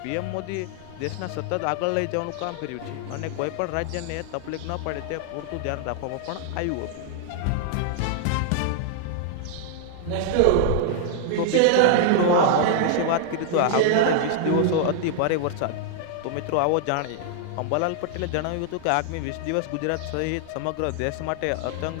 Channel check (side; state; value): both; different; correlation -0.01